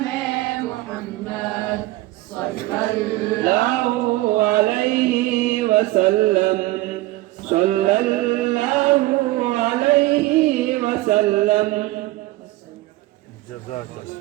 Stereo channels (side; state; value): left; quieter; 18.4 dB